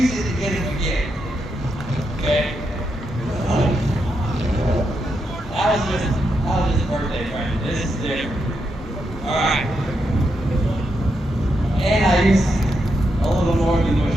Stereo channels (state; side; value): normal; both; correlation 0.83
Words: it to get him a gift. Okay? That was just a birthday present. This is different. Alright. And I used a little more than what